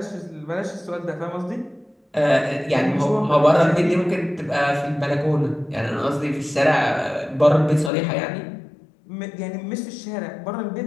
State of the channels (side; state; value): right; drops out; at 7.9 s